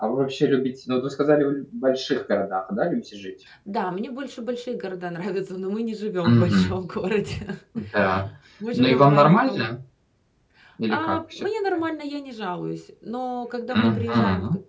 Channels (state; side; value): identical; both; correlation 1.00